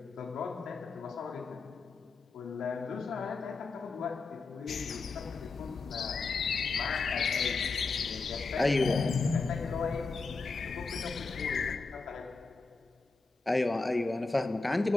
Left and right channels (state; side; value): quieter; right; 4.0 dB